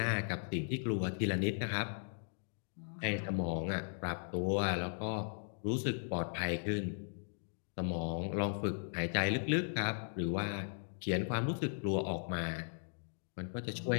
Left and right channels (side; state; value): right; silent; digital silence